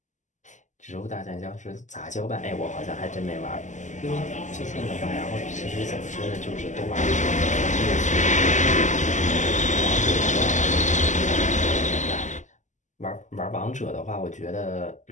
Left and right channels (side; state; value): right; late; 0.35 ms